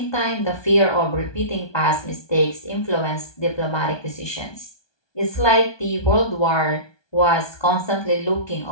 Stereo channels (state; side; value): late; right; 1.2 ms